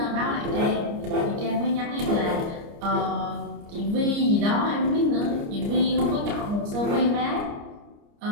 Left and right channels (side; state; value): left; late; 29 ms